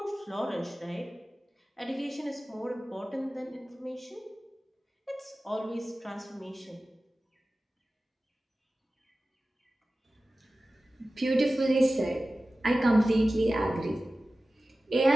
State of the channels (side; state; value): both; normal; correlation 0.96